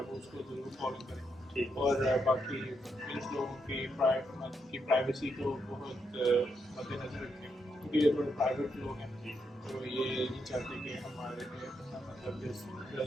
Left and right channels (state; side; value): normal; both; correlation 0.80